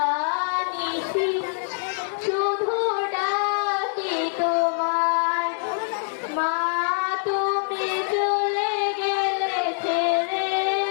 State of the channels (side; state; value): right; silent; digital silence